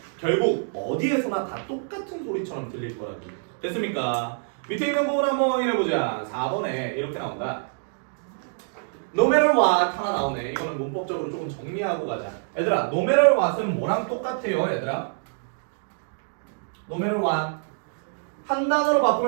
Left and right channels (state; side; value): silent; left; digital silence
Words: 결국 어디에서나 다 똑같은 소리처럼 들릴 거라고. 됐습니까? 밑에 있는 부분 한번 확인해보자. 4번에 이렇게 나온다. No matter what 하나 나오네. 이거는 문법적으로 조금 정리하고 가자. 얘들아 no matter what은 뭐랑 똑같아요 얘들아? No matter what 한 단어로